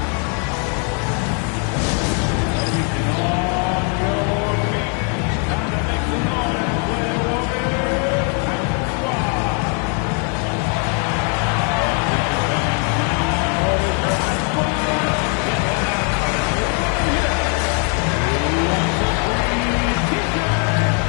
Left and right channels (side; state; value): right; quieter; 39.6 dB